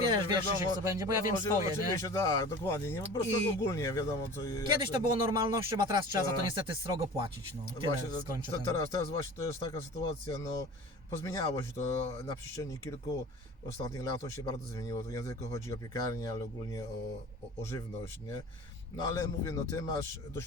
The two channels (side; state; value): both; normal; correlation 0.39